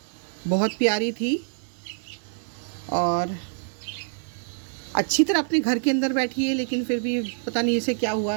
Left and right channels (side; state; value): left; silent; digital silence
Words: बहुत प्यारी थी और अच्छी तरह अपने घर के अंदर बैठी है, लेकिन फिर भी पता नहीं इसे क्या